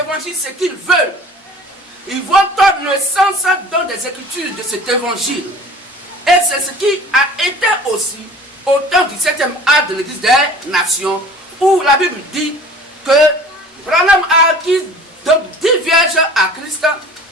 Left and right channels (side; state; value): both; normal; correlation 0.45